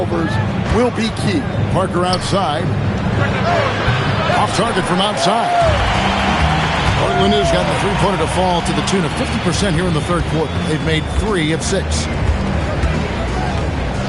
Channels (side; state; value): both; identical; correlation 1.00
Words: will be key. Parker outside. Off target from outside. Portland has got the three-pointer to fall to the tune of 50% here in the third quarter. They've made 3 of 6.